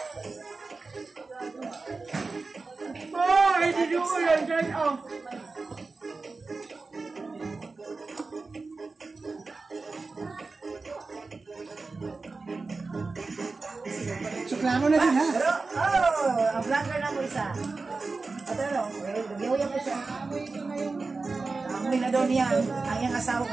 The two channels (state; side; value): quieter; left; 3.9 dB